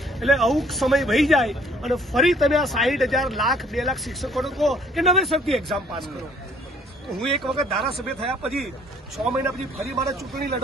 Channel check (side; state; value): both; normal; correlation 0.60